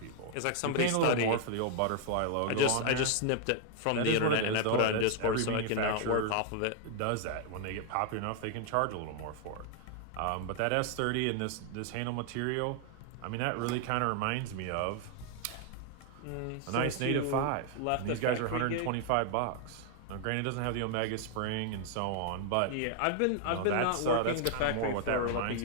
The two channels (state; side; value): different; both; correlation 0.00